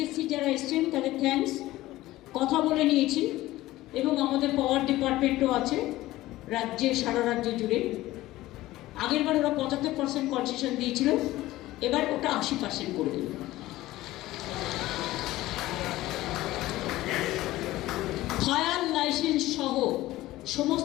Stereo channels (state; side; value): quieter; right; 16.8 dB